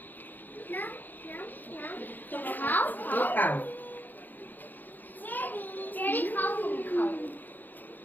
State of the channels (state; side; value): late; right; 0.087 ms